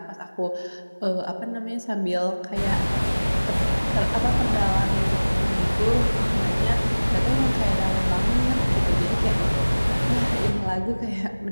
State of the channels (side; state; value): both; inverted; correlation -1.00